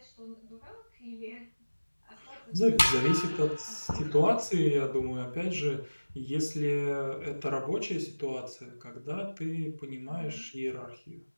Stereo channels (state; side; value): inverted; both; correlation -1.00